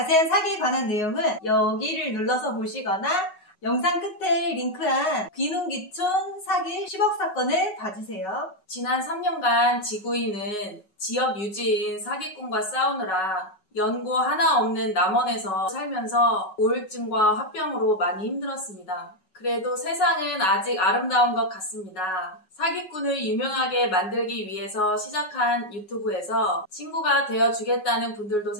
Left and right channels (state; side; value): late; right; 5.4 ms